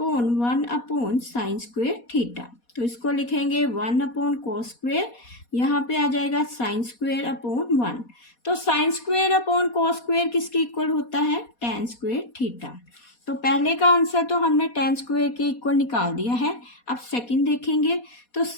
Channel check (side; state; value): right; late; 4.2 ms